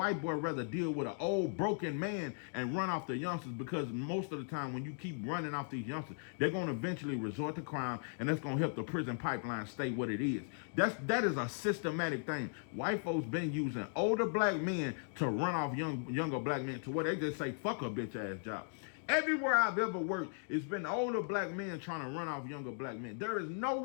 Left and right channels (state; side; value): silent; right; digital silence